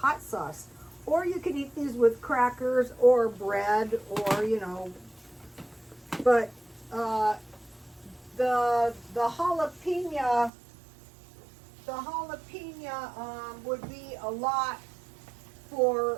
sauce. Or you can eat these with crackers or bread or, you know. But the jalapeno would be a lot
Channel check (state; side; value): drops out; left; at 10.5 s